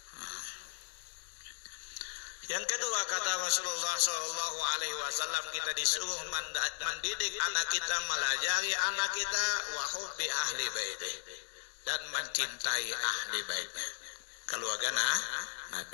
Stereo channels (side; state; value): right; silent; digital silence